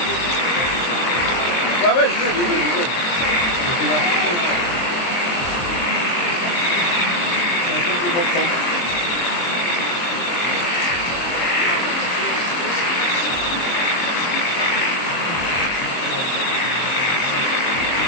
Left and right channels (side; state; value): right; late; 23 ms